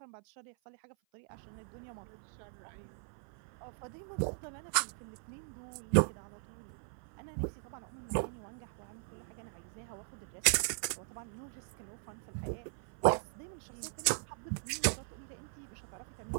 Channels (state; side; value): silent; left; 52 dB below the other